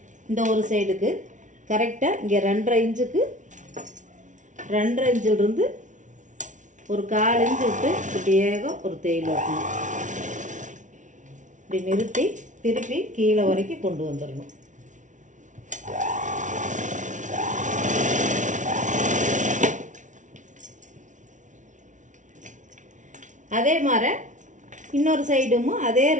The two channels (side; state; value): left; late; 0.37 ms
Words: இந்த ஒரு சைடுக்கு கரெக்டாக இங்கே 2.5 இன்ச்சுக்கு 2.5 இன்ச்சிலிருந்து ஒரு 1/4 இன்ச்சு விட்டு இப்படியே ஒரு தையல் வைக்கணும். இப்படி நிறுத்தி திருப்பி கீழே வரைக்கும் கொண்டு வந்துடணும். அதே மாதிரி இன்னொரு சைடும் அதே